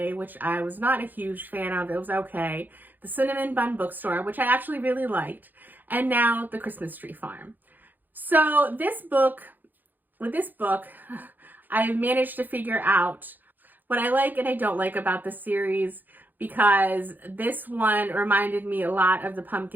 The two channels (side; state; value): left; late; 0.087 ms